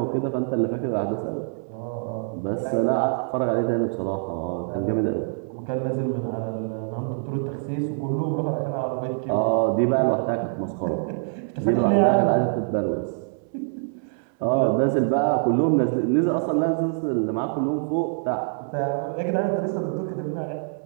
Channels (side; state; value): left; silent; 62 dB below the other